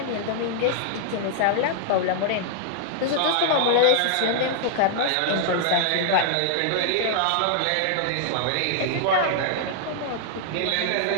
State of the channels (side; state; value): both; different; correlation -0.01